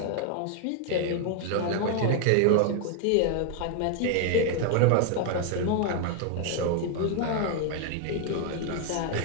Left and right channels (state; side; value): different; both; correlation 0.00